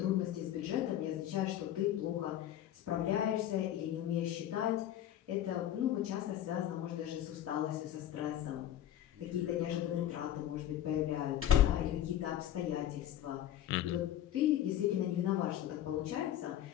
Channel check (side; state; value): right; quieter; 11.7 dB